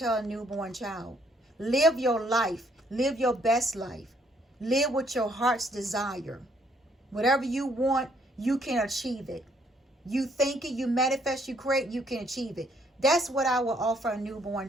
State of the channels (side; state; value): both; normal; correlation 0.67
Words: a newborn child. Live your life. Live your best life. Live with your heart's desire. Whatever you want, you can achieve it. You think it, you manifest, you create, you can achieve it. That's what I will offer a newborn